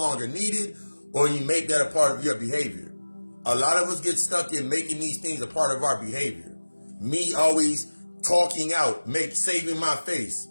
needed, or you make that a part of your behavior. A lot of us get stuck in making these things a part of our behavior. Me always talking out, saving my face.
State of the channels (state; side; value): inverted; both; correlation -1.00